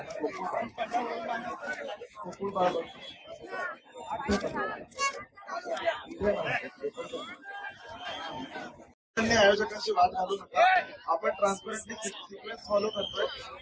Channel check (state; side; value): identical; both; correlation 1.00